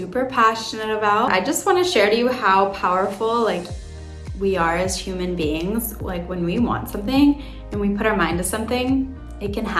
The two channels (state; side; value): identical; both; correlation 1.00